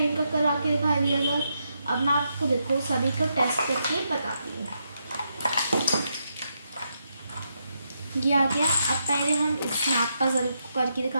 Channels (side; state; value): both; inverted; correlation -0.81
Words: का करा के दिखा दिया था। अब मैं आपको देखो सभी को टेस्ट करके बताती हूँ। ये आ गया। अब पहले हम इस स्नैप पजल को करके